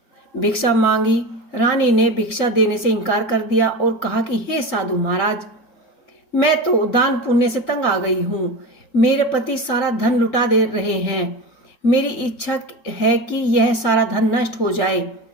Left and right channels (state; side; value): late; right; 3.8 ms